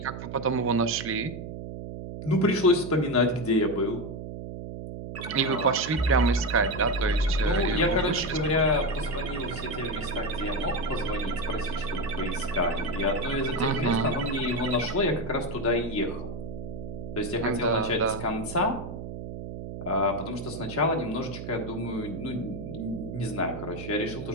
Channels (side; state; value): right; noise; hum, 8 dB below the sound